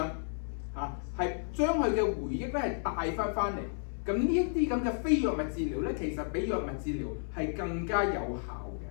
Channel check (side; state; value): right; silent; 56 dB below the other